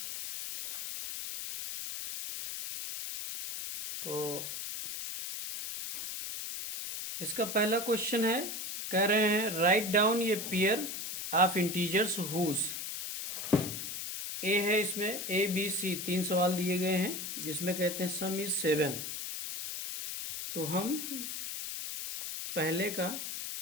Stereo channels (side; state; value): left; noise; hiss, 5 dB below the sound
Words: तो इसका पहला क्वेश्चन है, कह रहे हैं राइट डाउन ये पेयर ऑफ इंटीजर्स हुज। ए है, इसमें ए बी सी 3 सवाल दिए गए हैं जिसमें कहते हैं सम इज 7। तो हम पहले